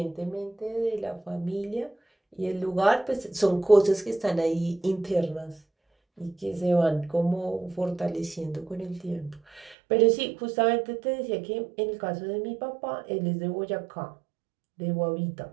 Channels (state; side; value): drops out; left; at 9.8 s